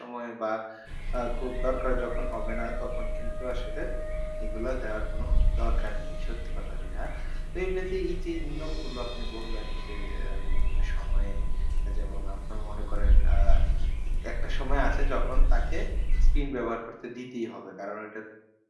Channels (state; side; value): identical; both; correlation 1.00